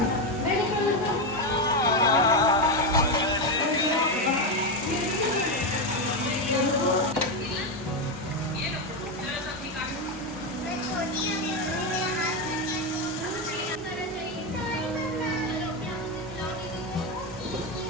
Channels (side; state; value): both; normal; correlation 0.09